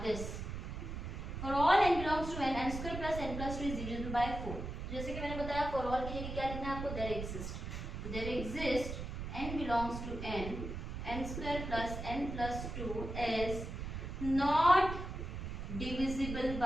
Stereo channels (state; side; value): noise; right; rumble, 6 dB below the sound